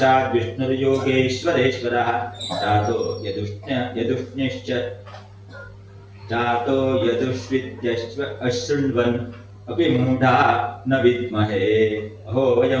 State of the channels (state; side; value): identical; both; correlation 1.00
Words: ವಿಷ್ಣುರ್ಯೋಗೇಶ್ವರೇಶ್ವರಃ ಜಾತೋ ಯದುಷ್ಣಿಶ್ಚ ಜಾತೋ ಯದುಷ್ವಿದ್ಯಶ್ವ ಅಶೃಣ್ವನ್ ಅಪಿ ಮೂಢಾ ನ ವಿದ್ಮಹೇ ಅಹೋ